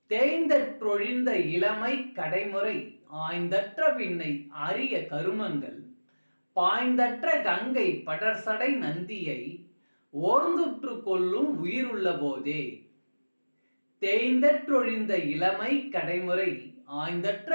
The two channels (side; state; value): both; inverted; correlation -1.00